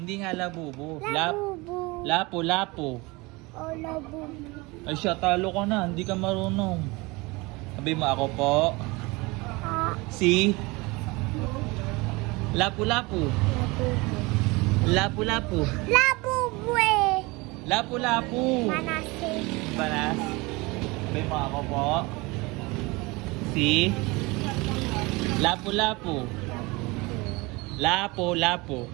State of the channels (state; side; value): quieter; left; 24.4 dB